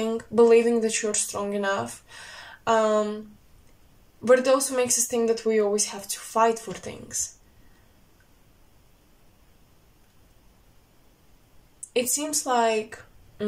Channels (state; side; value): identical; both; correlation 1.00